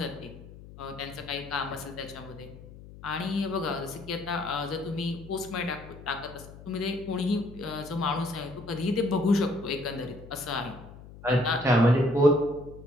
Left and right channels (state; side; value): noise; left; hum, 17 dB below the sound